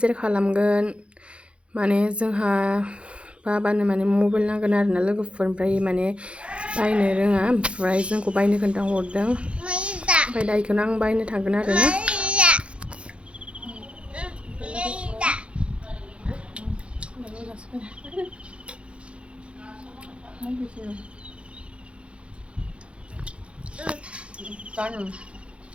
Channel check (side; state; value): left; late; 0.059 ms